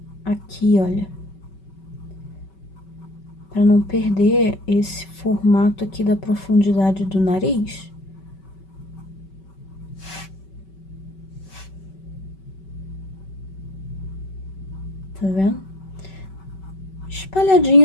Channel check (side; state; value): right; late; 5.2 ms